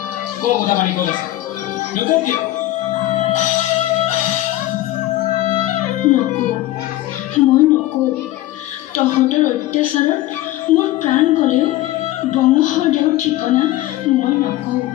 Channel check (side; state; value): right; quieter; 15.5 dB